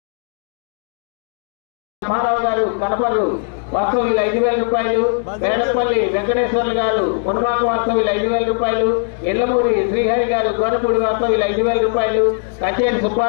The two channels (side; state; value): right; silent; 67 dB below the other